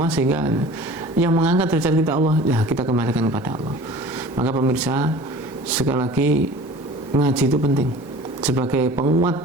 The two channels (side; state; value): both; normal; correlation 0.43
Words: sehingga yang mengangkat derajat kita Allah, ya kita kembalikan kepada Allah. Maka pemirsa, sekali lagi ngaji itu penting sebagai penguat